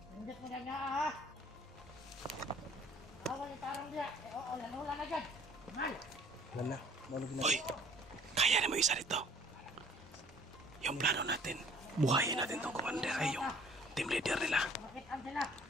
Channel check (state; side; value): normal; both; correlation 0.54